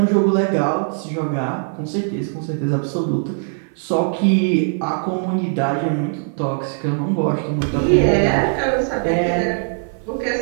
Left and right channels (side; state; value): left; silent; 58 dB below the other